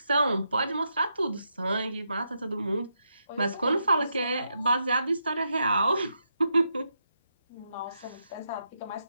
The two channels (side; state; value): both; inverted; correlation -0.82